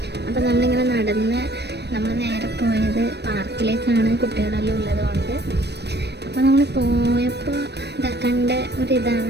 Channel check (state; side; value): late; left; 0.49 ms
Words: അപ്പോൾ നമ്മളിങ്ങനെ നടന്ന് നമ്മൾ നേരെ പോയത് പാർക്കിലേക്കാണ്, കുട്ടികളെല്ലാം ഉള്ളതുകൊണ്ട്. അപ്പോൾ നമ്മൾ പോയപ്പോൾ കണ്ട